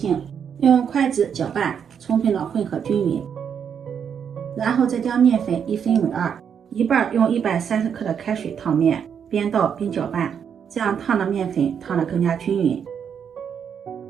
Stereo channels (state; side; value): quieter; left; 7.6 dB